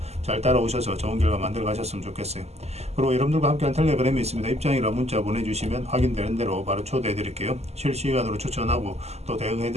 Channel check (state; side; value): late; left; 0.31 ms